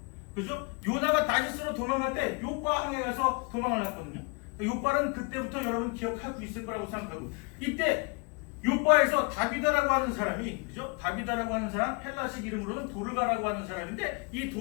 그죠? 요나가 다시스로 도망갈 때 요바항에 가서 도망을 했거든요. 요바는 그때부터 여러분 기억하고 있을 거라고 생각하고, 이때 요바에서 다비다라고 하는 사람이, 그죠? 다비다라고 하는 사람, 헬라식 이름으로는 도르가라고 하는 사람인데, 이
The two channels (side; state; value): right; quieter; 32.2 dB